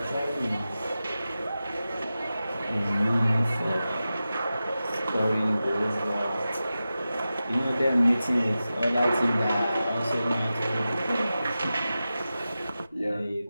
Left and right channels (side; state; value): both; inverted; correlation -0.93